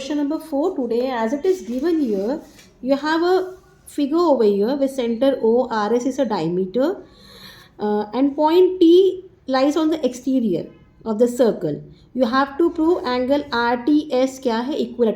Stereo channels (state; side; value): identical; both; correlation 1.00